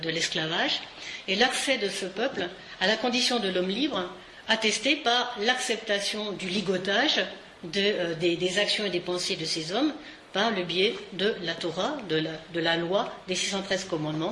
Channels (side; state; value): both; identical; correlation 1.00